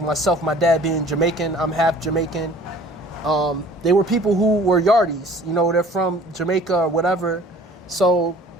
my dad being Jamaican, I'm half Jamaican. They were people who were Yardies, you know, they're from Jamaica or whatever, so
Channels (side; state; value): both; normal; correlation 0.50